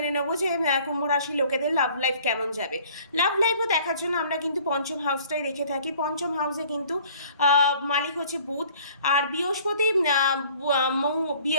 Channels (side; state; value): both; inverted; correlation -0.53